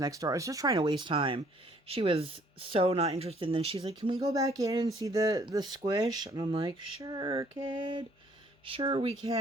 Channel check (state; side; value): normal; both; correlation 0.61